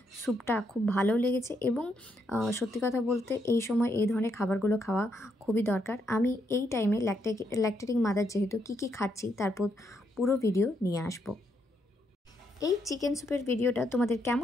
স্যুপটা খুব ভালো লেগেছে, এবং সত্যি কথা বলতে এই সময় এই ধরনের খাবারগুলো খাওয়া খুবই দরকার। আমি এই টাইমে ল্যাকটেটিং মাদার যেহেতু কী খাচ্ছি তারপর পুরো ভিডিও নিয়ে আসবো। এই চিকেন স্যুপের ভিডিওটা তোমাদের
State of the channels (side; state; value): both; normal; correlation 0.77